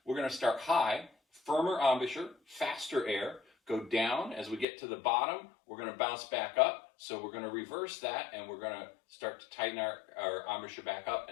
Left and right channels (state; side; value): drops out; right; at 4.7 s